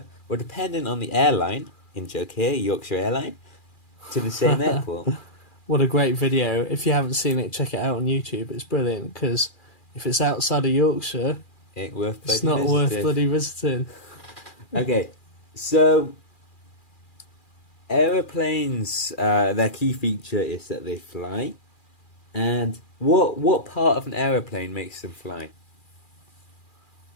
or depending on the airline. In joke here, Yorkshire Airline, to the same airport. What a great video. If you haven't seen it, check it out on YouTube. It's brilliant, because if it's outside of Yorkshire, Ain't worth it's bloody not worth visiting. bloody visiting. Okay, so aeroplanes, their key feature is that they fly. And what part of an aeroplane makes them fly?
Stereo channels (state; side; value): late; right; 2.4 ms